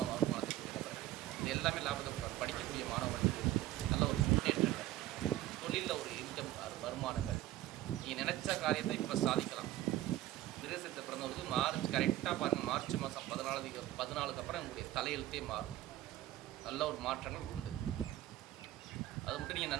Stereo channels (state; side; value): quieter; left; 14.4 dB